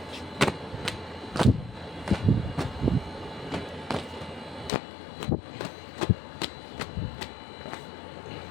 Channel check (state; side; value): drops out; right; at 4.7 s